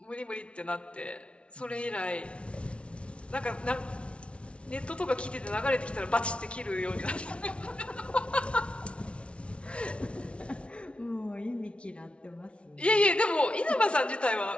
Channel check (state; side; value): late; right; 0.060 ms